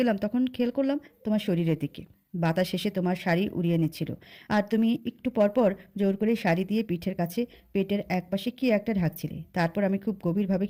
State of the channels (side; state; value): both; identical; correlation 1.00